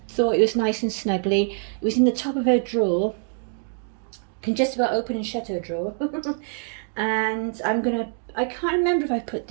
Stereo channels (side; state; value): left; silent; 62 dB below the other